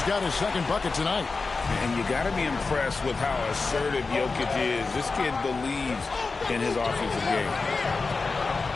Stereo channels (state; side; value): quieter; right; 4.1 dB